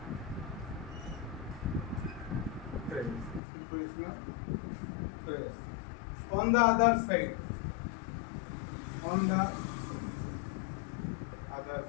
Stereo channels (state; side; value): drops out; right; at 3.4 s